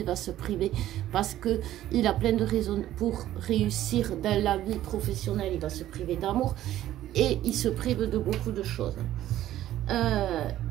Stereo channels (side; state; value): left; quieter; 13.3 dB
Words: va se priver parce qu'il a plein de raisons pour réussir dans la vie professionnelle, il va se priver d'amour et il se prive de beaucoup de choses.